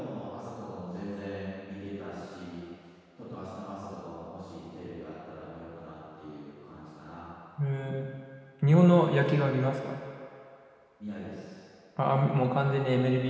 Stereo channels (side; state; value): both; identical; correlation 1.00